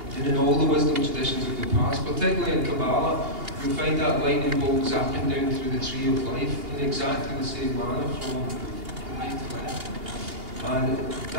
And in all the wisdom traditions of the past, particularly in Kabbalah, you'll find that lightning bolt zapping down through the tree of life in exactly the same manner from right to left. And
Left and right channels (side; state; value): left; late; 2.8 ms